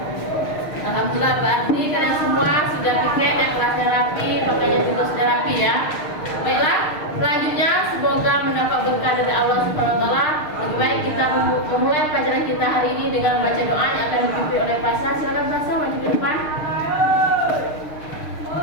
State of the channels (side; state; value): right; late; 6.5 ms